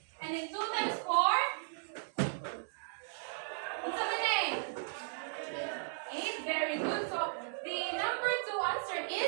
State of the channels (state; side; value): silent; left; digital silence